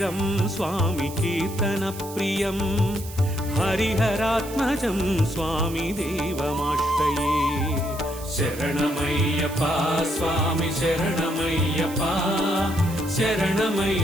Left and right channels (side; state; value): right; noise; hiss, 15 dB below the sound